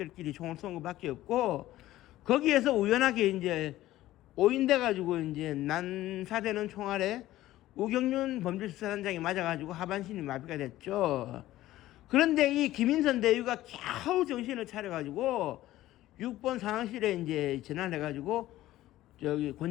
총을 쏜 것밖에 없고, 거기에서 우연하게 이제 오인돼 가지고 이제 난사되는 총알에 우경륜 범죄수사단장이 맞아가지고 하반신이 마비가 됐죠. 그런데 이 김인선 대위가 겨우 정신을 차려가지고 6번 상황실에 이제 전화해가지고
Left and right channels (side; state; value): right; quieter; 15.3 dB